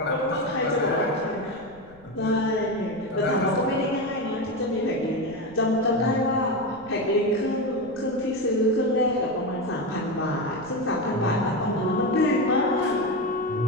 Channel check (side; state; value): left; noise; rumble, 24 dB below the sound